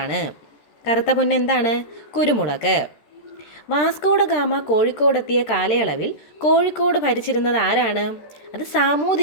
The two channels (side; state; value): right; late; 14 ms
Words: കറുത്ത പൊന്ന് എന്താണ്? കുരുമുളക്. വാസ്കോഡ ഗാമ കോഴിക്കോടെത്തിയ കാലയളവിൽ കോഴിക്കോട് ഭരിച്ചിരുന്നത് ആരാണ്? അത്